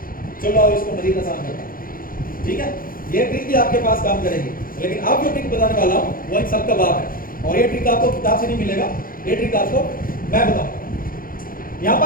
चलो अब इसको मजीद आसान करते हैं, ठीक है। ये ट्रिक भी आपके पास काम करेगी, लेकिन अब जो ट्रिक बताने वाला हूँ वो इन सब का बाप है, और ये ट्रिक आपको किताब से नहीं मिलेगा, ये ट्रिक आपको मैं बताऊँ। यहाँ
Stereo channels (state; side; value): late; right; 0.41 ms